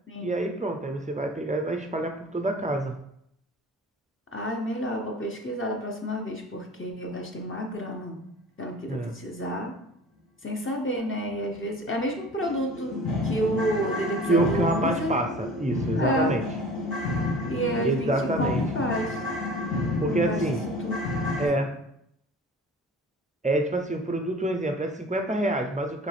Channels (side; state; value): both; normal; correlation 0.43